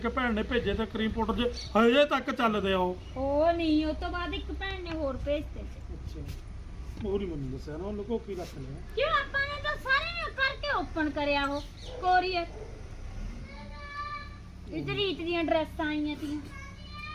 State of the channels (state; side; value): identical; both; correlation 1.00